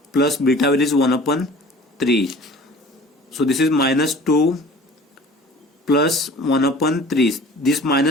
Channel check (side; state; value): both; normal; correlation 0.45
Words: plus beta value is 1 upon 3. So this is minus 2 plus 1 upon 3. This